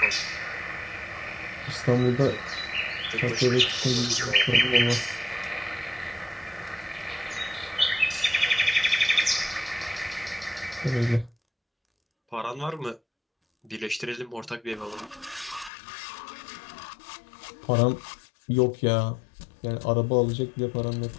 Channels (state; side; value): drops out; right; at 15.7 s